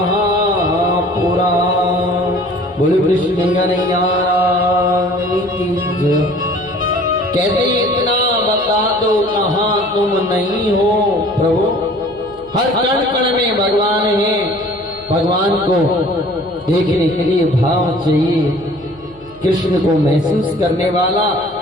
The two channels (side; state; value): left; noise; hum, 26 dB below the sound